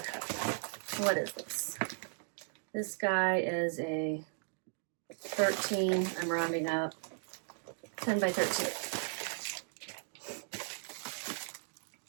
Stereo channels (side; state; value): left; silent; digital silence